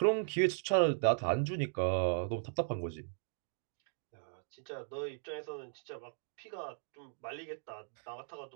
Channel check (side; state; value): left; silent; digital silence